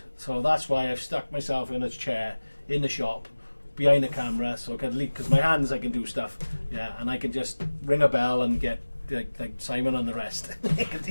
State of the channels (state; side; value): inverted; both; correlation -1.00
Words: So that's why I've stuck myself in a chair in the shop behind the camera, so I can leave, because my hands I can do stuff, yeah, and I can just ring a bell and get like Simon and the rest